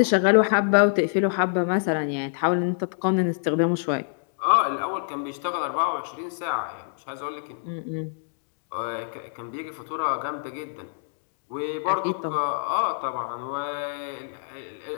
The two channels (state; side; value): silent; right; digital silence